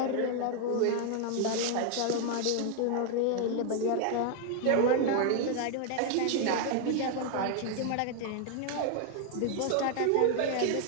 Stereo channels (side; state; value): both; different; correlation 0.00